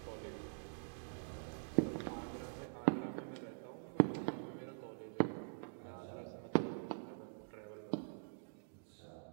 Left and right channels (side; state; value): left; silent; digital silence